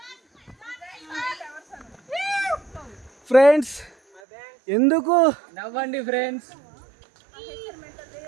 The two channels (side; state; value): left; drops out; at 4.2 s